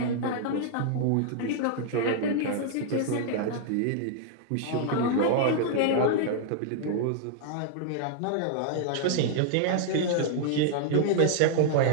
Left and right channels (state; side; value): different; both; correlation -0.01